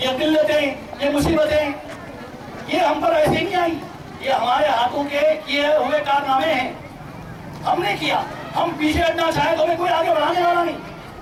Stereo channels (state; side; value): identical; both; correlation 1.00